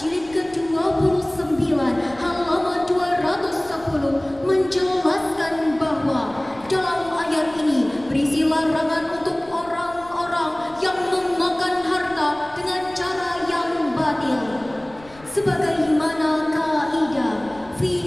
ke-29 halaman 210 menjelaskan bahwa dalam ayat ini berisi larangan untuk orang-orang yang memakan harta dengan cara yang batil. Sebagaimana kaidah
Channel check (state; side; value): noise; left; rumble, 23 dB below the sound